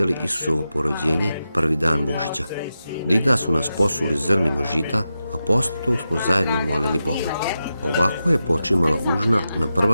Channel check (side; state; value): both; inverted; correlation -0.90